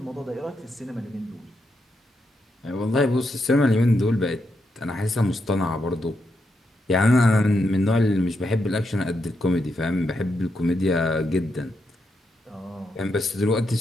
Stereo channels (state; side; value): normal; both; correlation 0.82